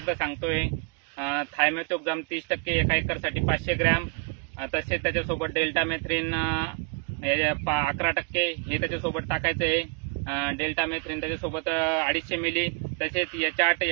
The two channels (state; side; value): quieter; left; 37.0 dB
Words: सांगतोय। थायमेथोक्झाम 30% एका एकरसाठी 500 ग्रॅम, तसेच त्याच्यासोबत डेल्टामेथ्रिन 11% हे त्याच्यासोबत टाकायचे आहे। डेल्टामेथ्रिन त्याच्यासोबत 250 मिली, तसेच H8